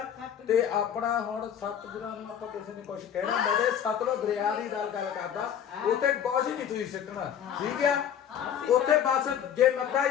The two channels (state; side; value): quieter; right; 9.1 dB